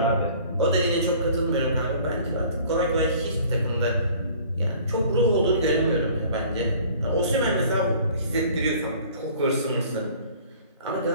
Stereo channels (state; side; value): inverted; both; correlation -0.50